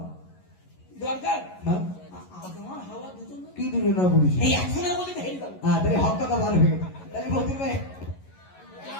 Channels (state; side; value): late; right; 11 ms